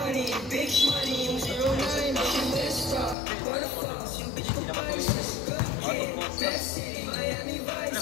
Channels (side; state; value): right; drops out; at 3.2 s